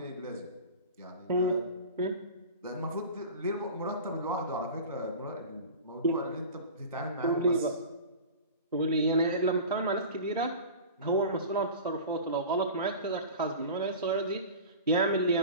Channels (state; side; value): inverted; both; correlation -0.35